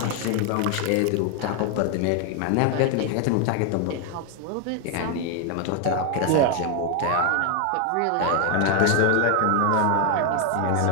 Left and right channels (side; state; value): both; different; correlation 0.01